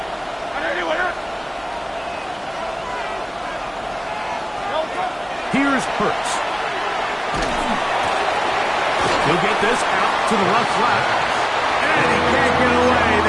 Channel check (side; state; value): both; identical; correlation 1.00